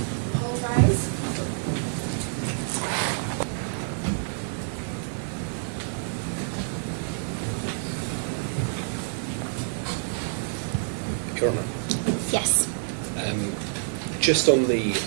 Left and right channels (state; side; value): silent; left; digital silence